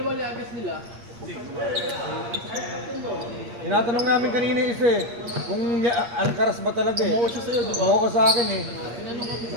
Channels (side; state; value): left; late; 8.6 ms